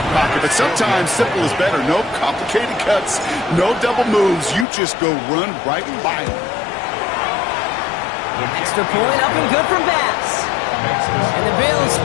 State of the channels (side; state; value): right; drops out; at 4.7 s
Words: pocket. But sometimes simple is better. No complicated cuts, no double moves. You just go run right by him. Extra point up and good from Bass. And the Bills